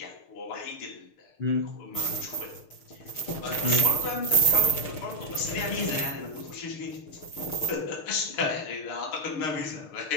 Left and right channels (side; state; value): right; late; 6.6 ms